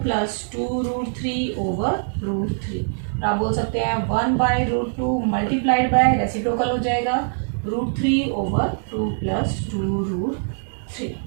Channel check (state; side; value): silent; left; digital silence